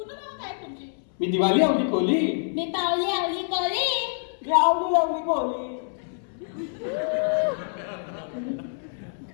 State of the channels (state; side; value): silent; right; 61 dB below the other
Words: नाव काय आहे तुमची? मी दिवाळी आवली कोली. मी पावली आवली कोली. मी आवली लावली कोली.